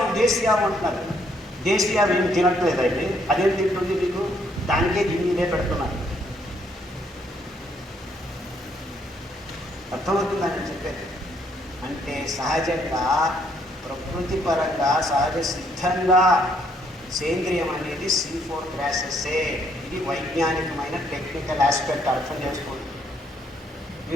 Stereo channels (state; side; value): normal; both; correlation 0.69